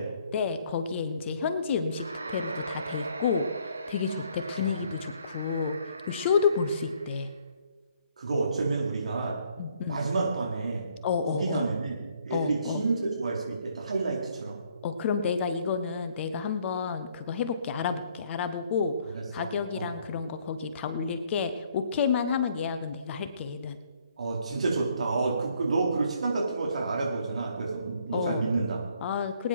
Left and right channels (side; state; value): both; inverted; correlation -0.66